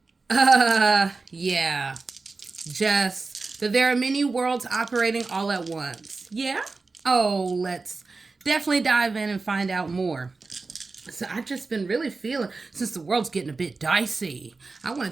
yeah, just that there are many worlds operating all at once. Yeah? Oh, let's definitely dive in and find out more. So I've just been really feeling, since the world's getting a bit dicey, I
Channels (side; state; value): left; quieter; 3.9 dB